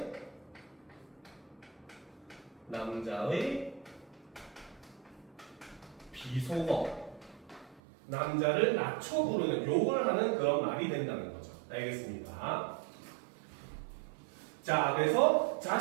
남자의 비속어, 남자를 낮춰 부르는 욕을 하는 그런 말이 된다는 거죠. 알겠습니까? 자, 그래서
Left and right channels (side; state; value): left; drops out; at 7.8 s